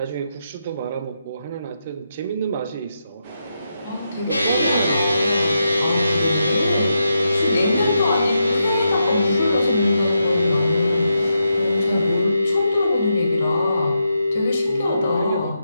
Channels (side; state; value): both; inverted; correlation -0.84